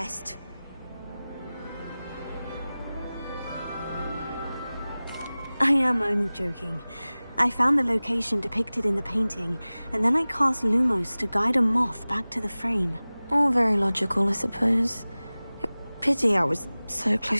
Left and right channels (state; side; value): inverted; both; correlation -0.98